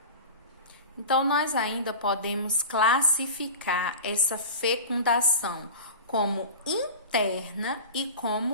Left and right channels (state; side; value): inverted; both; correlation -0.32